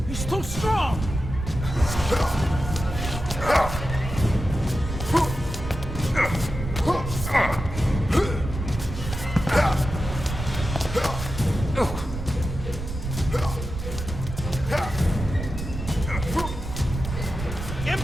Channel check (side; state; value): right; noise; rumble, 7 dB below the sound